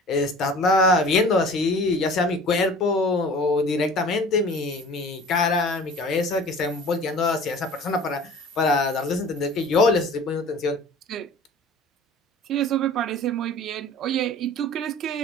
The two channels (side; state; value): both; normal; correlation 0.44